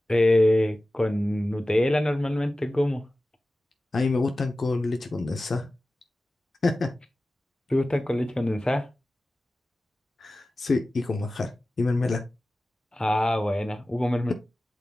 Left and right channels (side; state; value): both; normal; correlation 0.96